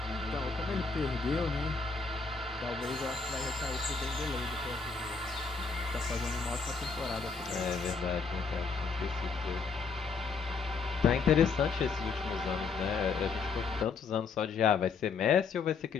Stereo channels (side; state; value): right; quieter; 4.9 dB